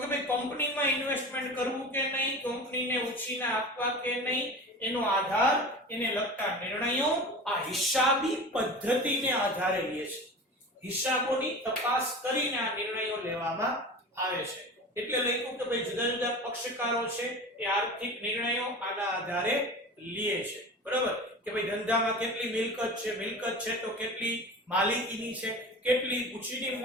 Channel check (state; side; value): normal; both; correlation 0.33